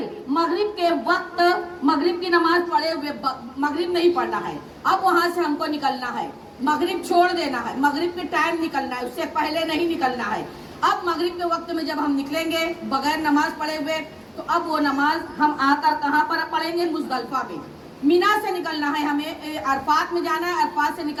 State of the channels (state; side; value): identical; both; correlation 1.00